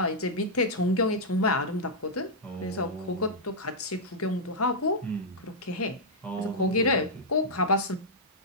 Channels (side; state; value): both; normal; correlation -0.08